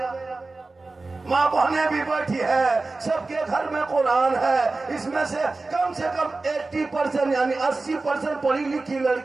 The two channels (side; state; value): left; quieter; 3.5 dB